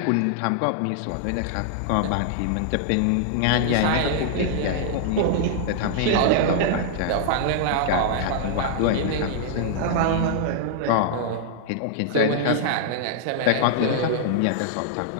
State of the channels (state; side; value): different; both; correlation -0.01